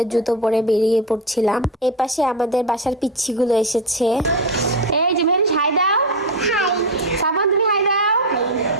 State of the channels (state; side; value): normal; both; correlation 0.15